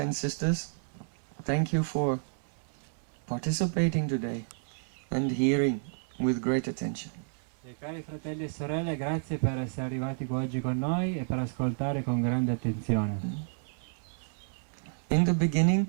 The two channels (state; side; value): silent; left; 57 dB below the other